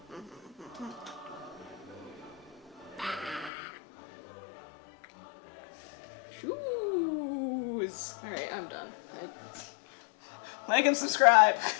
Shoes! Alright, I'm done. Like and subscribe!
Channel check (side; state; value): right; drops out; at 3.5 s